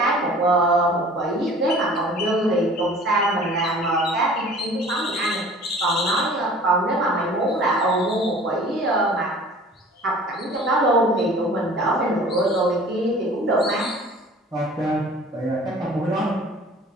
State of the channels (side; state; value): both; normal; correlation 0.47